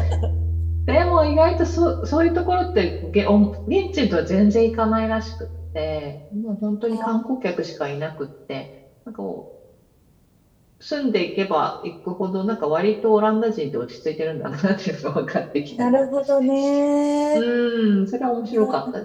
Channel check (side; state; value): both; identical; correlation 1.00